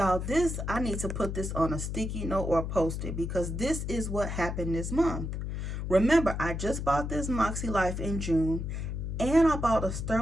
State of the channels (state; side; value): noise; left; hum, 4 dB below the sound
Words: I need to put this on a sticky note or post it because this is what happened this month. Remember, I just bought this MakseLife in June, and I bought a